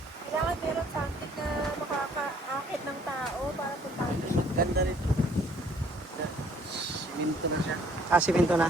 Kailangan meron something na makakaakit ng tao para puntahan siya. Ganda rito. Siminto na siya. Ah, simento na.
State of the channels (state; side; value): normal; both; correlation 0.60